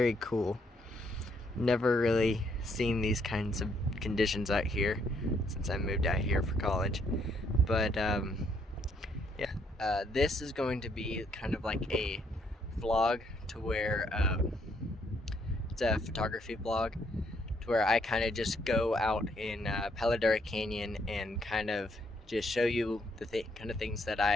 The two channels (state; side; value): normal; both; correlation 0.71